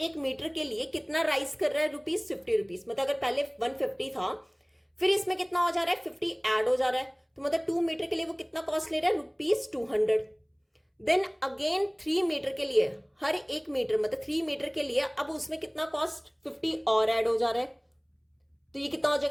मीटर के लिए कितना राइज कर रहा है, रुपीज 50 रुपीज। मतलब अगर पहले 150 था फिर इसमें कितना हो जा रहा है 50 ऐड हो जा रहा है, तो मतलब 2 मीटर के लिए वो कितना कॉस्ट ले रहा है, रुपीज 200। देन अगेन 3 मीटर के लिए हर एक मीटर मतलब 3 मीटर के लिए अब उसमें कितना कॉस्ट 50 और ऐड हो जा रहा है, तो ये कितना हो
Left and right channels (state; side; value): identical; both; correlation 1.00